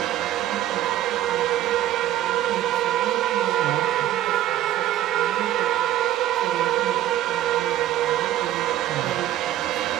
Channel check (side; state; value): left; quieter; 13.2 dB